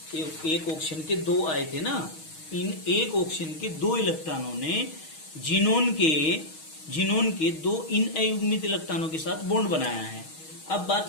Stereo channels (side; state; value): right; late; 6.3 ms